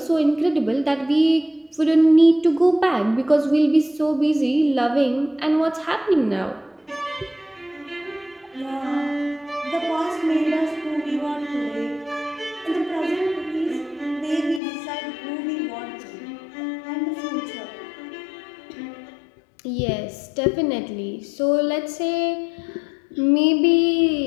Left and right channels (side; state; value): right; drops out; at 14.6 s